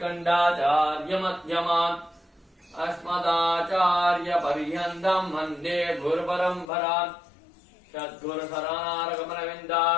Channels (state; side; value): drops out; right; at 6.7 s